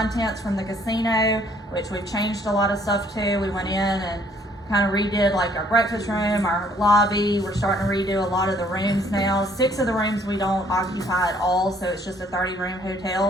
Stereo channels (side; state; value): both; normal; correlation 0.62